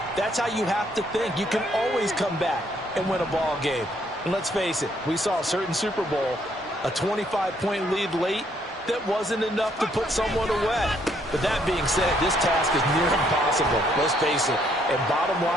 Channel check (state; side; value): normal; both; correlation 0.69